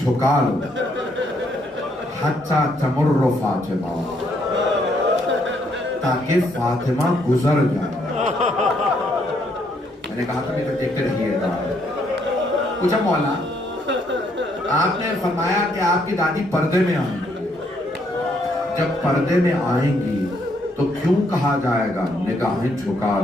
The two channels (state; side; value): normal; both; correlation 0.71